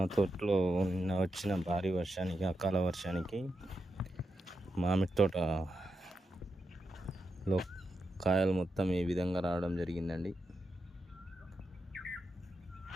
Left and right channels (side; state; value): both; normal; correlation 0.87